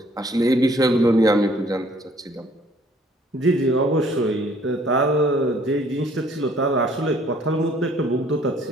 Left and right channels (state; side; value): normal; both; correlation 0.59